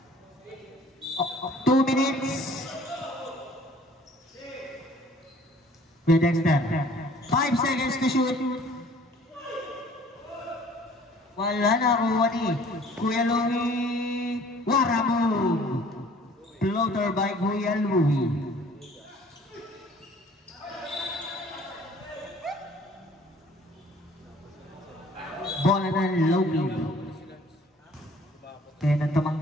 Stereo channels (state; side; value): normal; both; correlation 0.54